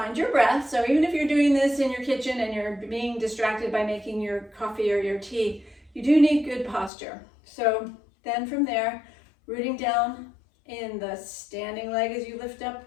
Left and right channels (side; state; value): right; drops out; at 6.9 s